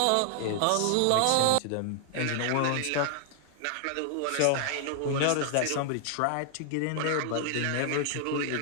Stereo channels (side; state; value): both; different; correlation 0.00